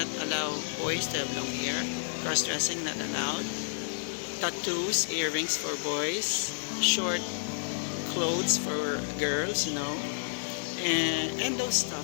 allow boys to have long hair. Cross-dressing not allowed. Tattoos, earrings for boys. Short clothes for girls, and those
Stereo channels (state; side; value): silent; right; digital silence